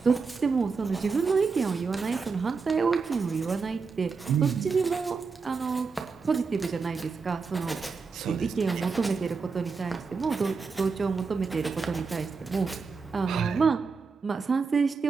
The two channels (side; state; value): left; quieter; 4.9 dB